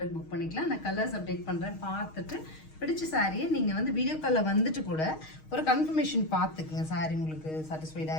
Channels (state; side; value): late; right; 6.4 ms